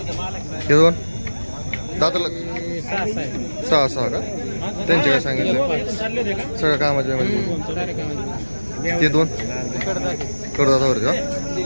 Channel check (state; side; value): inverted; both; correlation -1.00